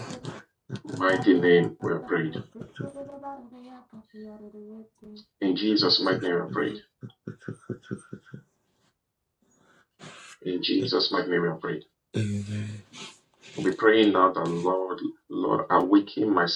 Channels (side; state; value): both; identical; correlation 1.00